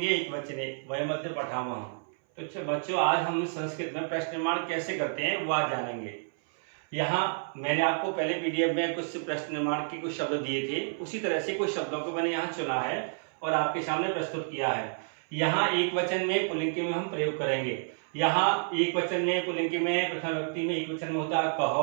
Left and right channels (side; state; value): left; silent; 58 dB below the other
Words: एकवचने वयम् अद्य पठामः। तो बच्चों आज हम संस्कृत में प्रश्न निर्माण कैसे करते हैं वो आज जानेंगे। यहाँ मैंने आपको पहले पीडीएफ में कुछ प्रश्न निर्माण के कुछ शब्द दिए थे, उसी तरह से कुछ शब्दों को मैंने यहाँ चुना है और आपके सामने प्रस्तुत किया है। यहाँ एक वचन में पुल्लिंग में हम प्रयोग करेंगे। यहाँ एक वचन में पुल्लिंग में प्रथम व्यक्ति में एक वचन में होता है